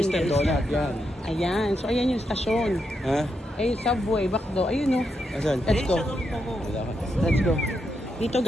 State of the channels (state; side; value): normal; both; correlation 0.83